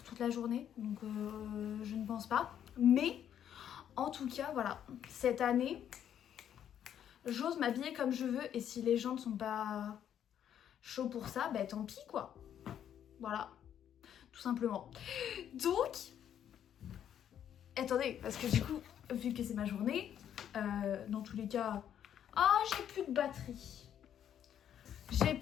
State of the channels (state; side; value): quieter; right; 9.7 dB